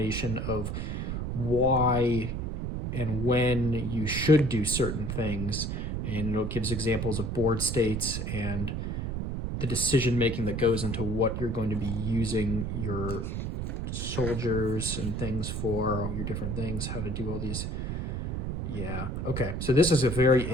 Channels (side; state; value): right; noise; rumble, 3 dB below the sound